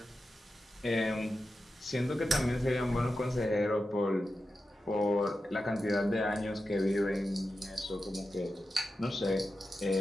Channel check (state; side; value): normal; both; correlation 0.91